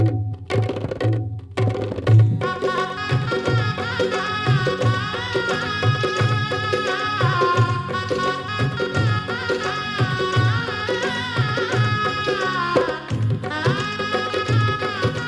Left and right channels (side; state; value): both; identical; correlation 1.00